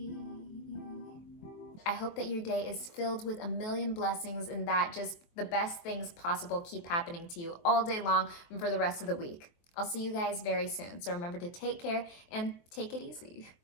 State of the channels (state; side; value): late; right; 23 ms